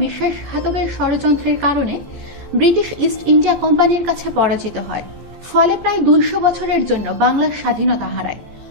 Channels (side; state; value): left; late; 14 ms